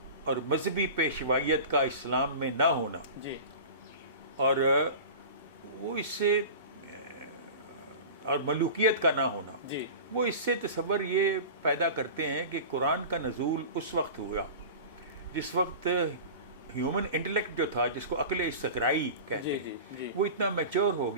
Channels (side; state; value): both; inverted; correlation -0.34